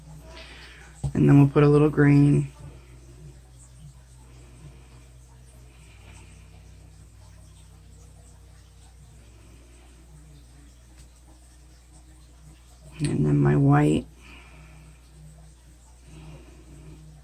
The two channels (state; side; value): identical; both; correlation 1.00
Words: And then we'll put a little green. And then my white.